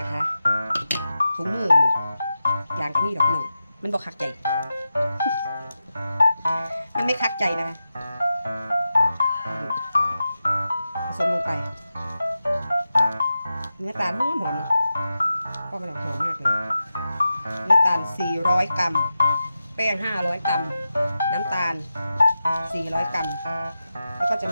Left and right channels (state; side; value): inverted; both; correlation -0.91